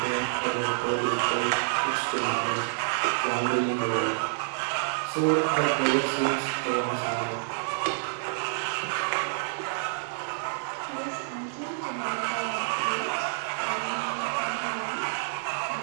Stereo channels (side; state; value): left; silent; digital silence